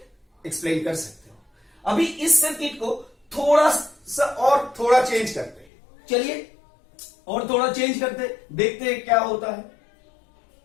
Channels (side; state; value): right; drops out; at 5.7 s